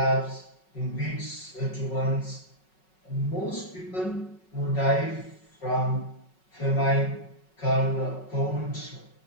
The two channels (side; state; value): right; late; 5.4 ms